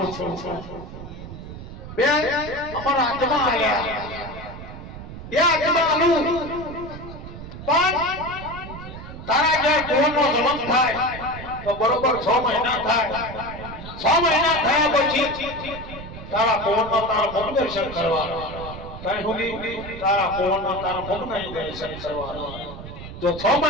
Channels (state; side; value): noise; right; rumble, 12 dB below the sound